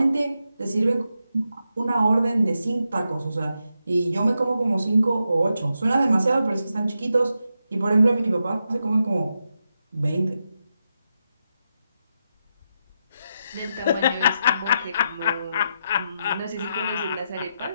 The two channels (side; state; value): both; inverted; correlation -0.85